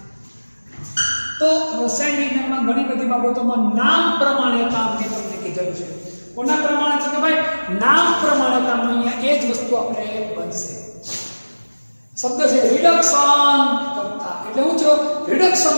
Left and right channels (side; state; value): both; inverted; correlation -1.00